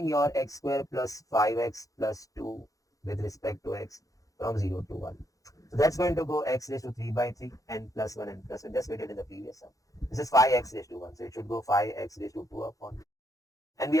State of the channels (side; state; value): right; late; 0.17 ms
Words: your x square plus 5x plus 2 with respect to x from 0 to 1. So that's going to go x raised to 3 by 3 and plus 1 and plus 1. Just we did in the previous sum. This is 5x raised to 1. So it should go 5x raised to 2 upon. And we